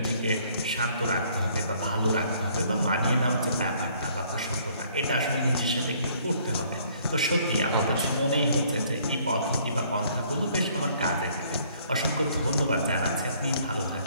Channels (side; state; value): both; inverted; correlation -0.62